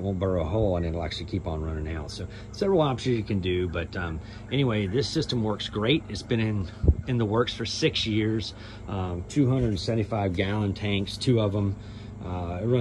won't burrow a hole and it'll actually keep on running out. So several options you can do, but anyway, this system works great. It's been in the works for 6 years. 275 gallon tanks, 2 of them. I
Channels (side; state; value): both; identical; correlation 1.00